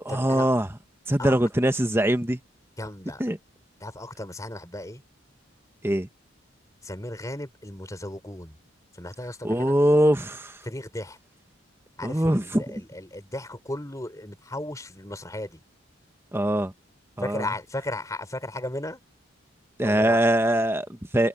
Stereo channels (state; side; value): normal; both; correlation 0.86